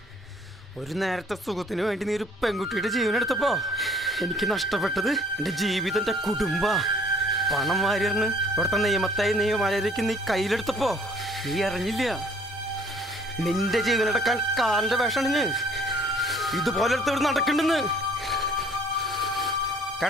ഒരു നേരത്തെ സുഖത്തിന് വേണ്ടി നീ ഒരു പെൺകുട്ടിയുടെ ജീവനെടുത്തപ്പോ എനിക്ക് നഷ്ടപ്പെട്ടത് എൻ്റെ ജീവിതം, എൻ്റെ കുടുംബ പണം വാരിയറിന് ഇവിടുത്തെ നിയമമര്യാദയ്ക്ക് നീ കയ്യിലെടുത്തപ്പോ നീ അറിഞ്ഞില്ല. നിന്റെ ജീവനെടുക്കാൻ കാലിൻ്റെ വേഷണിഞ്ഞ് ഇതുപോലെ എടുത്ത് നടക്കണ്ടെന്ന്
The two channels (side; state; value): both; normal; correlation 0.57